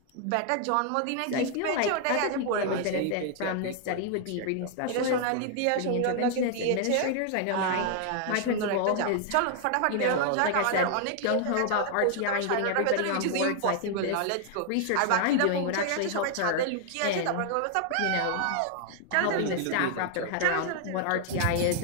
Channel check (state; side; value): different; both; correlation 0.00